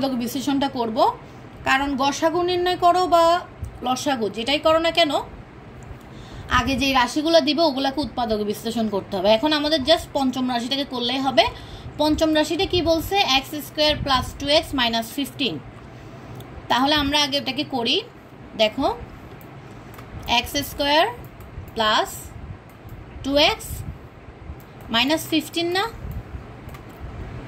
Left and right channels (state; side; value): identical; both; correlation 1.00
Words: বিশ্লেষণটা করব। কারণ গসাগু নির্ণয় করো বা লসাগু যেটাই করো না কেন, আগে যে রাশিগুলো দিবে ওগুলোকে উৎপাদক বিশ্লেষণ করতে হবে। এখন আমাদের জাস্ট পঞ্চম রাশিটাকে করলেই হবে। পঞ্চম রাশিটা কি বলছে? X square plus 2x minus 15। তাহলে আমরা আগে এটাকে করি। দেখো, x square plus 2x minus 15 না,